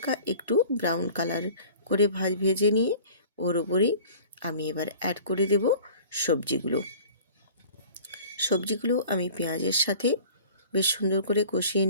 একটু ব্রাউন কালার করে ভেজে নিয়ে ওর ওপরেই আমি এবার অ্যাড করে দেব সবজিগুলো। সবজিগুলো আমি পেঁয়াজের সাথে বেশ সুন্দর করে কষিয়ে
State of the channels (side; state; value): both; inverted; correlation -0.45